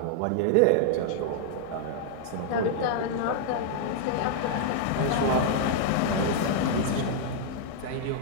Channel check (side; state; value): both; different; correlation -0.01